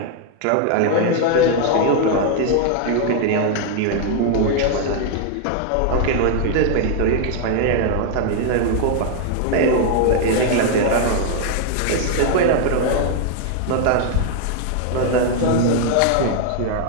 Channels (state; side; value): different; both; correlation 0.00